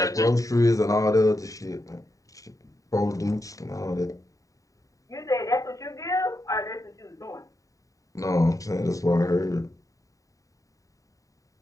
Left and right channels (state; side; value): late; right; 0.16 ms